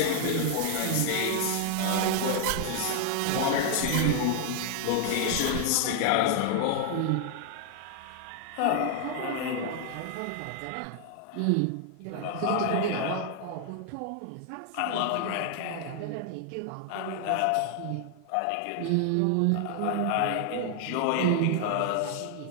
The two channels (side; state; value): both; different; correlation 0.00